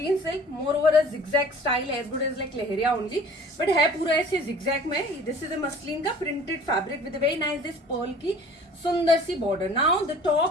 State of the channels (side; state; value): both; normal; correlation 0.47